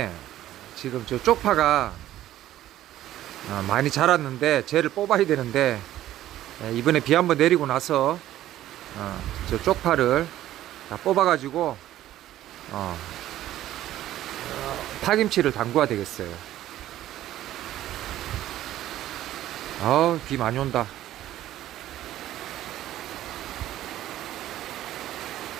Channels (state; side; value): quieter; left; 13.5 dB